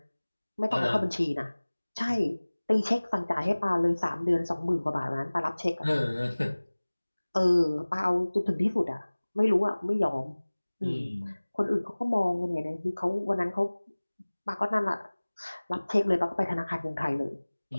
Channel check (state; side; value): inverted; both; correlation -1.00